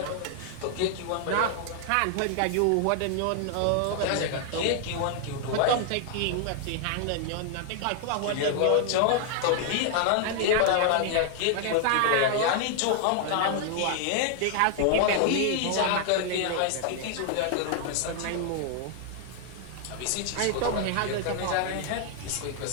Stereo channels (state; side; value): different; both; correlation 0.00